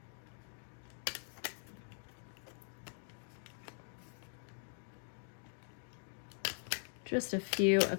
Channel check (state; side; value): silent; right; digital silence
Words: Just a few